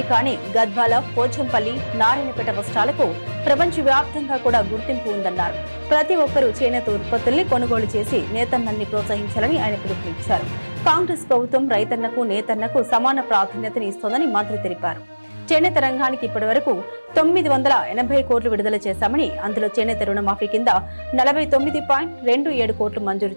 అని గద్వాల, పోచంపల్లి, నారాయణపేట వస్త్రాలకు ప్రపంచవ్యాప్తంగా కూడా గుర్తింపు ఉందన్నారు. ప్రతి ఒక్కరూ చేనేత ఉత్పత్తుల్ని కొనుగోలు చేసి నేతన్నల్ని ప్రోత్సహించాలని ఆయన పిలుపునిచ్చారు. కాంగ్రెస్ ప్రభుత్వం రైతన్నకు, నేతన్నకు సమాన ప్రాధాన్యతని ఇస్తోందని మంత్రి తెలిపారు. చేనేత రంగానికి ఇప్పటి వరకు 980 కోట్లు విడుదల చేశామని, అందులో చేనేత రుణమాఫీ కింద 49.27 కోట్లు మంజూరు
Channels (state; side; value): inverted; both; correlation -1.00